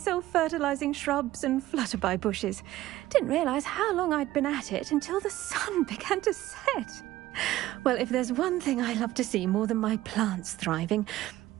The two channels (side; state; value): left; quieter; 15.5 dB